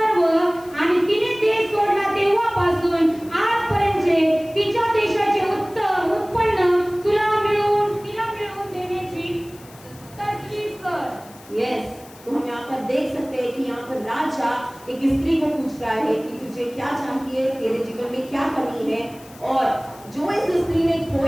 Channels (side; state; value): left; noise; hiss, 23 dB below the sound